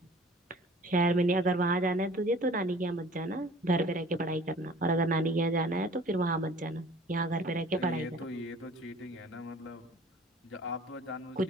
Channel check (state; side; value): normal; both; correlation 0.48